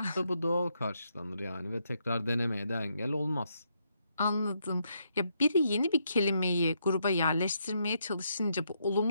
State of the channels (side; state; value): both; inverted; correlation -0.78